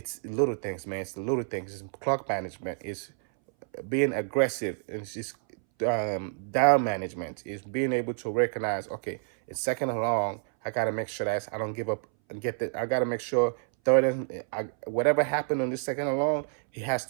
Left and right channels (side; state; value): left; silent; 59 dB below the other